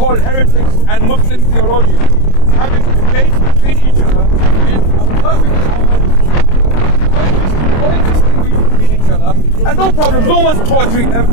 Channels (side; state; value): right; late; 26 ms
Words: heretics, and Muslim theologians, having debates between each other in a perfect harmony, coexisting between each other, and no problem. No one's torturing them.